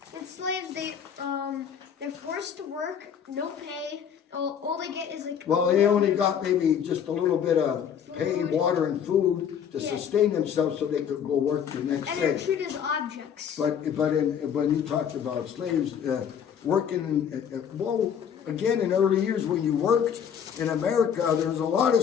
And slaves, they're forced to work, no pay. All they get is like. Well, they only got maybe just a little bit of pay, water and food to Yeah. sustain themselves so they could go work the next And they're day. treated as objects. But when you talked about slaves, working, well, again, in early years when you worked in America, there was a lot of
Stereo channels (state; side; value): quieter; right; 8.1 dB